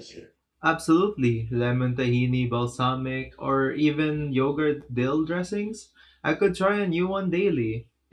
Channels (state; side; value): identical; both; correlation 1.00